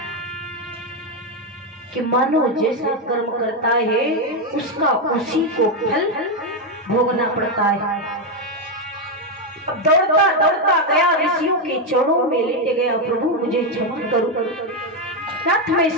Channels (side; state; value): both; normal; correlation 0.05